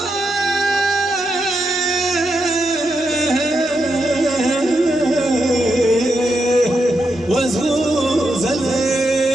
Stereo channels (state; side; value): normal; both; correlation 0.84